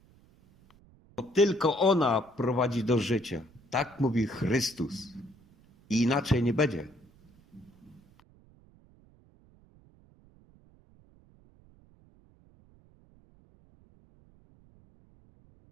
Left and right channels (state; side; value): noise; right; rumble, 28 dB below the sound